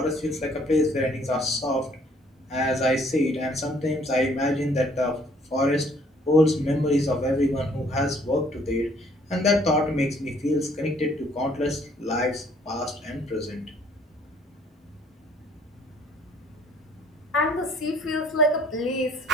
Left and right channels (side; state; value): both; normal; correlation 0.61